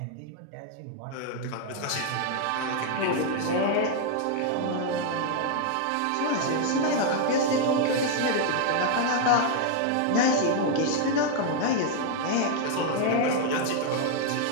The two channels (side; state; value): both; different; correlation 0.00